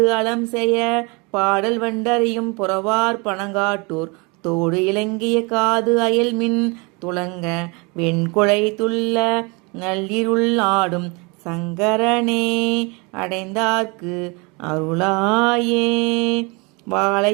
அலம் செய்ய பாடல் வண்டறியும் புறவார் பனங்காட்டூர் தோடு இலங்கிய காது அயல்மின் துளங்க வெண்குழை துள்ள நள்ளிருள் ஆடும் சங்கரனே அடைந்தார்க்கு அருளாயே.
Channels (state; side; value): quieter; left; 29.0 dB